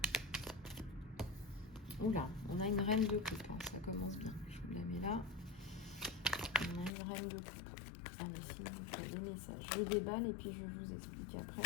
Oula, on a une reine de coupe, hein, ça commence bien. Je vous la mets là. On a une reine de coupe. Allez, sinon, il y a des messages. Je déballe et puis je vous explique après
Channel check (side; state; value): right; drops out; at 6.9 s